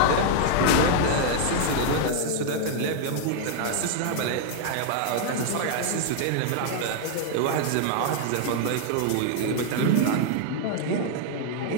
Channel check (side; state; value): both; different; correlation 0.00